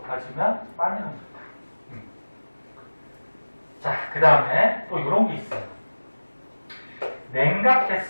많이 녹는다. 자, 그 다음에 또 이런 게 있어요.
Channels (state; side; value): inverted; both; correlation -1.00